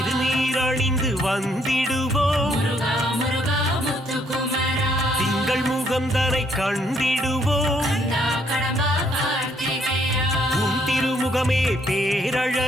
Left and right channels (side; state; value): both; normal; correlation 0.69